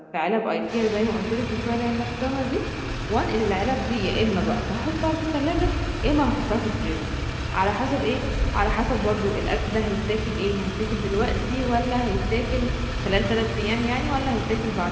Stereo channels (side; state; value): both; identical; correlation 1.00